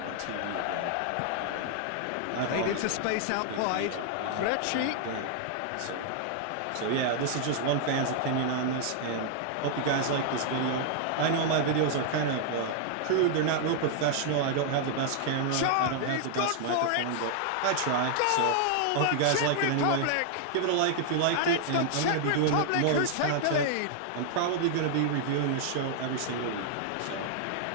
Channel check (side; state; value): both; different; correlation 0.00